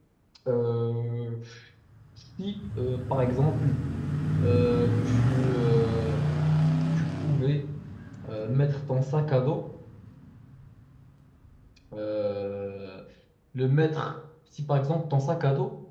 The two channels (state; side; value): identical; both; correlation 1.00